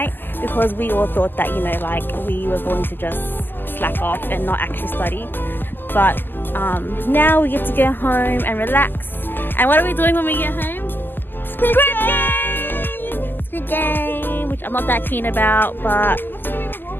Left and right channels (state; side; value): late; right; 0.092 ms